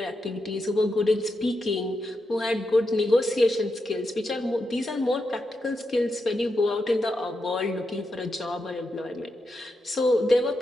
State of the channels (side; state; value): both; normal; correlation 0.86